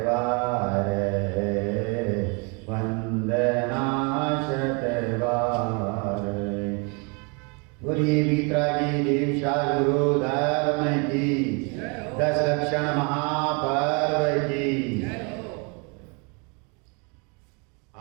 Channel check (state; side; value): quieter; left; 32.9 dB